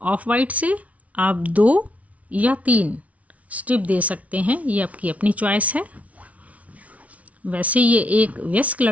ऑफ वाइट से आप 2 या 3 स्ट्रिप दे सकते हैं, ये आपकी अपनी चॉइस है। वैसे ये एक वयस्क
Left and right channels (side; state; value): left; late; 0.067 ms